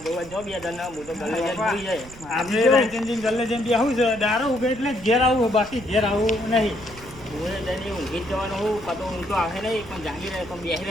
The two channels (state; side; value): noise; right; rumble, 18 dB below the sound